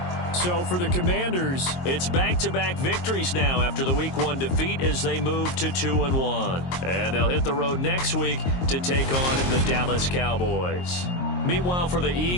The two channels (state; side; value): late; right; 22 ms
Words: So for the Commanders, it's back-to-back victories now after the Week 1 defeat as they move to 2-1. And they'll hit the road next week to take on the Dallas Cowboys. Meanwhile, for the